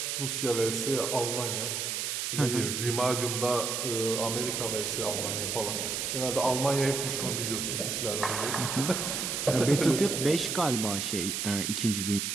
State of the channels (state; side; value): noise; right; hiss, 1 dB below the sound